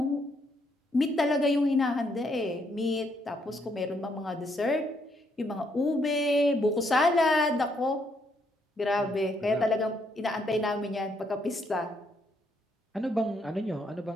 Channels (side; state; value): both; normal; correlation 0.73